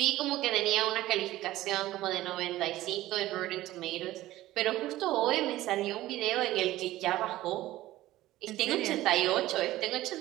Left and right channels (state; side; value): quieter; left; 15.9 dB